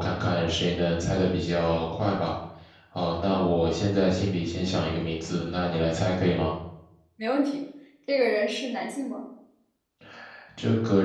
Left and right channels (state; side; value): identical; both; correlation 1.00